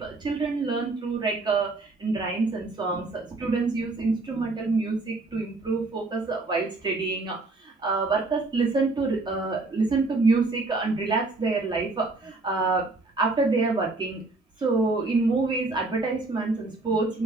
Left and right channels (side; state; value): left; quieter; 3.3 dB